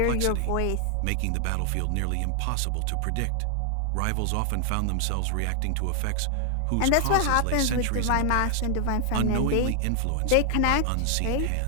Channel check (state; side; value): different; both; correlation 0.00